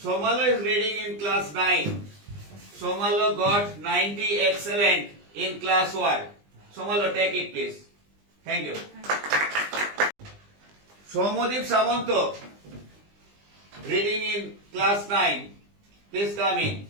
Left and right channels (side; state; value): left; late; 20 ms